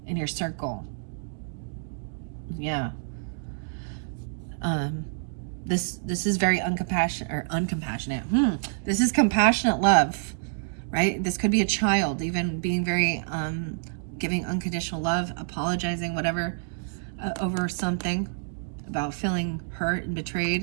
in your circle. Yeah. This is very uncompassionate. This is compassionate love, right? This could be a child, even being very giving unconditional love, apologizing, whatever, over something, about feeling hurt and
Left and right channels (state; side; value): silent; left; digital silence